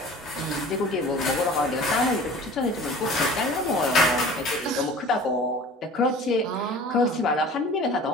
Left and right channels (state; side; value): normal; both; correlation 0.43